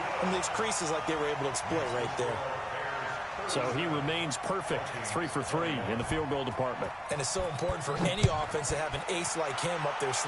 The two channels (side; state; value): both; identical; correlation 1.00